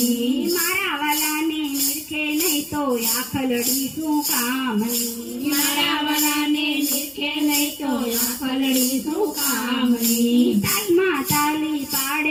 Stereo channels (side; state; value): both; identical; correlation 1.00